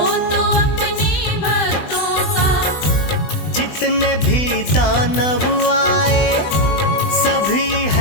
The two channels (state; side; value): late; right; 20 ms